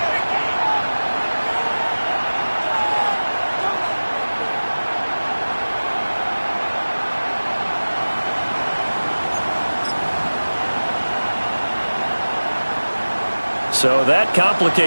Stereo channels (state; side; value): inverted; both; correlation -1.00